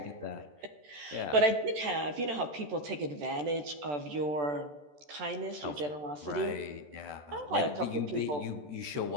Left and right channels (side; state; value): left; late; 14 ms